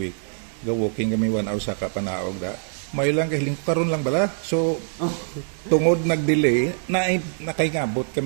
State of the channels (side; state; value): left; silent; digital silence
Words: Go walking kami 1 hour sa kapanaog da. Mayo lang kahiling ko karon lang bala. So tungod nag-delay na nakaingabot